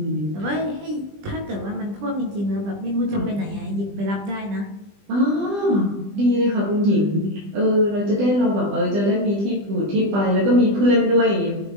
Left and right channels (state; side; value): late; left; 20 ms